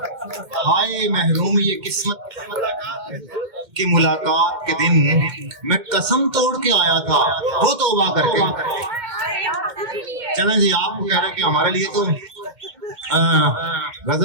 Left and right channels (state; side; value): late; left; 2.1 ms